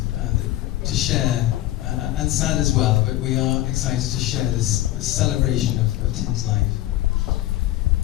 to share, and sad as well, but we are excited to share this celebration of Tim's life.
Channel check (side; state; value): right; quieter; 15.1 dB